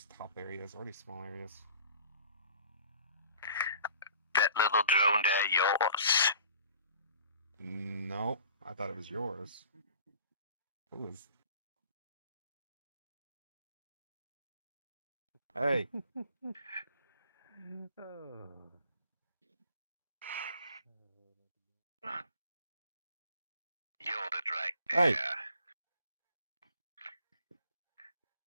top areas or these small areas. That little drone there yours? No, I thought it was yours. Who is? Hey, You're it right hey, there.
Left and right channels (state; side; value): inverted; both; correlation -0.48